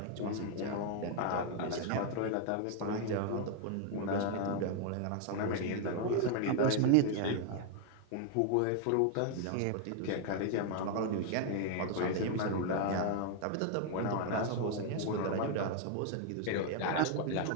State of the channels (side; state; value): both; different; correlation 0.00